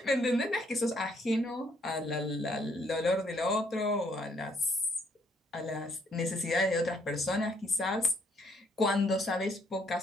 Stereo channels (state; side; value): normal; both; correlation 0.68